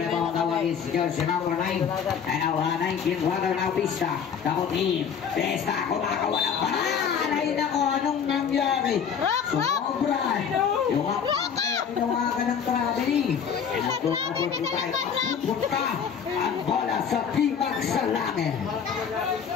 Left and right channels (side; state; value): right; quieter; 7.2 dB